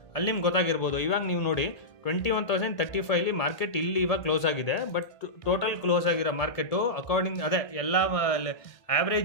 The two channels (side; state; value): right; late; 1.6 ms